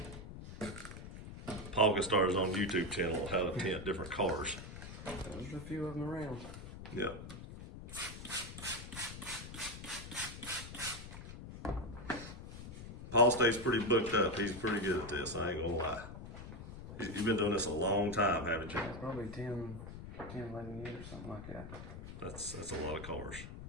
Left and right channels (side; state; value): left; noise; rumble, 11 dB below the sound